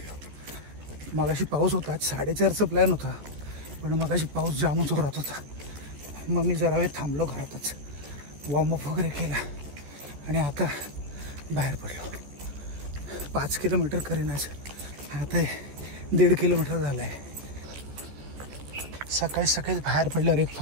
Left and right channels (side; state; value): left; late; 14 ms